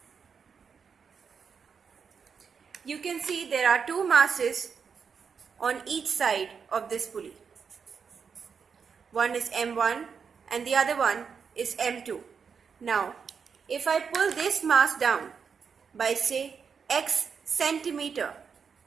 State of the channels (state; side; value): quieter; left; 6.2 dB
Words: You can see there are two masses on each side of this pulley. One is M1 and the other one is M2. Now, if I pull this mass down by say X centimeter,